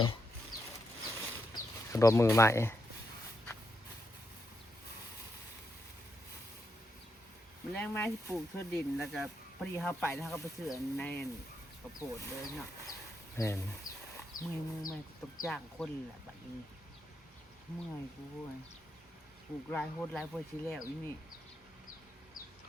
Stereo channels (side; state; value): both; normal; correlation 0.82